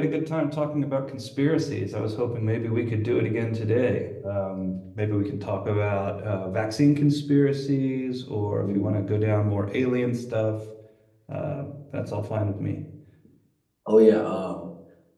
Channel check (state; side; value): identical; both; correlation 1.00